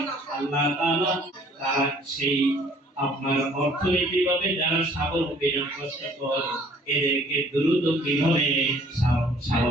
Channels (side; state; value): both; normal; correlation 0.57